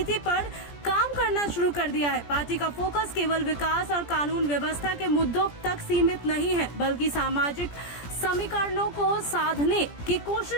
पर काम करना शुरू कर दिया है। पार्टी का फोकस केवल विकास और कानून व्यवस्था के मुद्दों तक सीमित नहीं है, बल्कि सामाजिक समीकरणों को साधने की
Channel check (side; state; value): right; late; 17 ms